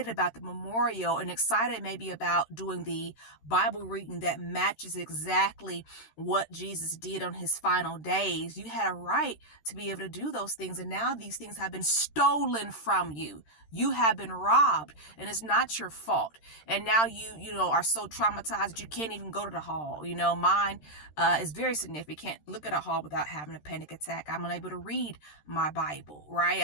about the memorial and excited maybe about doing the Bible reading that matches exactly what Jesus did on his final days. You had a right to be able to do those things. And now these things have been stolen from you. You have been robbed and it's not your fault. And now you are so traumatized that you can't even go to the hall. Mine is very significant. Look at a hall without having a panic attack. I'm unable to read my Bible, right?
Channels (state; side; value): late; right; 13 ms